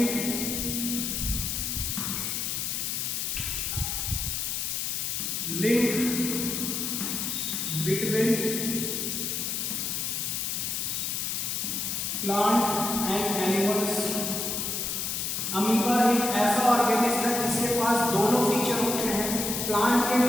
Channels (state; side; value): noise; left; hiss, 1 dB below the sound